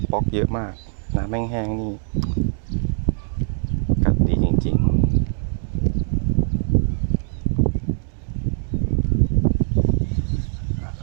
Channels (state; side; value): silent; left; 64 dB below the other